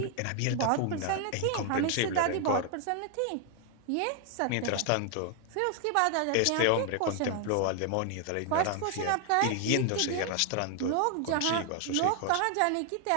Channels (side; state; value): both; different; correlation 0.00